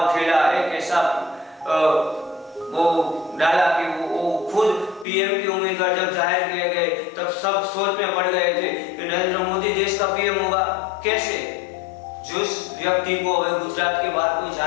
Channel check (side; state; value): right; drops out; at 5.1 s